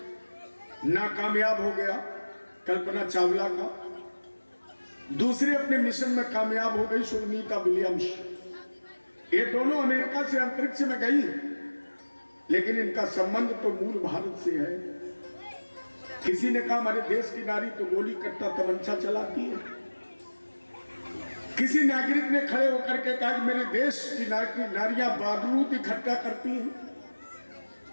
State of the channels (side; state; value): both; inverted; correlation -1.00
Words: नाकामयाब हो गया, कल्पना चावला का, दूसरे अपने मिशन में कामयाब हो गई, सुनीता विलियम्स। ये दोनों अमेरिका से अंतरिक्ष में गई, लेकिन इनका संबंध तो मूल भारत से है। किसी ने कहा हमारे देश की नारी तो गोली कट्टा तमंचा चलाती है। किसी नागरिक ने खड़े होकर के कहा कि मेरे देश की नारियां बारूद इकट्ठा करती हैं,